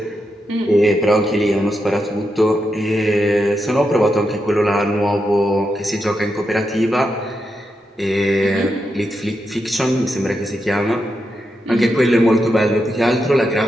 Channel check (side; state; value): both; normal; correlation 0.85